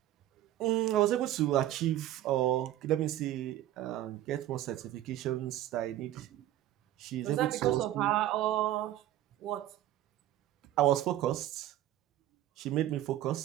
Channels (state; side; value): quieter; left; 13.3 dB